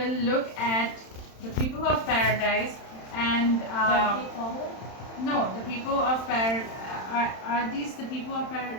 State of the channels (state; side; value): late; right; 31 ms